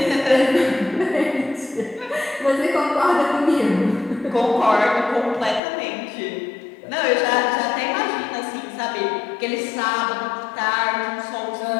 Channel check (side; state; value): right; drops out; at 5.6 s